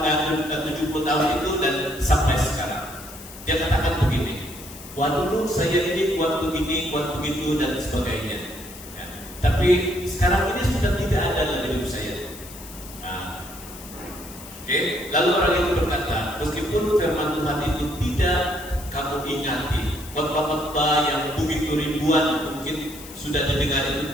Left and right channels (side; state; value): left; noise; hiss, 16 dB below the sound